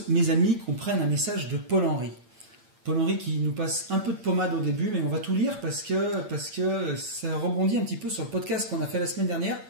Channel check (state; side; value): late; left; 8.7 ms